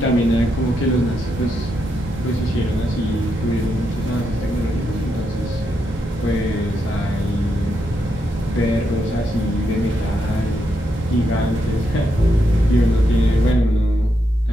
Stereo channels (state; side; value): normal; both; correlation 0.82